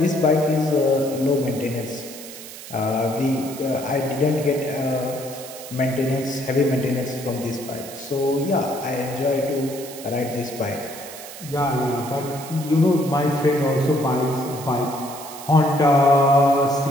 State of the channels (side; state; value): right; noise; hiss, 14 dB below the sound